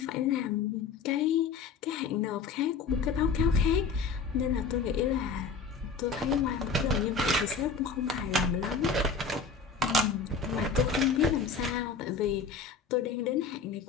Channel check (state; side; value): quieter; right; 5.0 dB